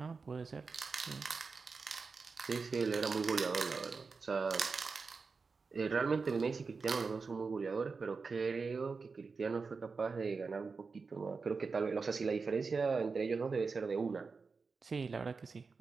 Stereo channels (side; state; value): left; quieter; 4.6 dB